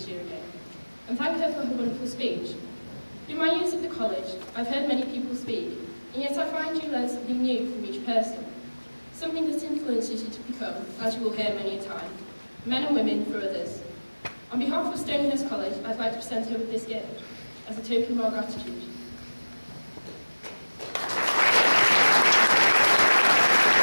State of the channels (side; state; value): both; inverted; correlation -1.00